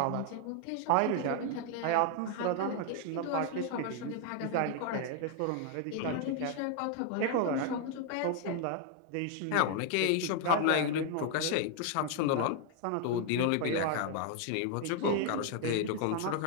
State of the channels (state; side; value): different; both; correlation 0.00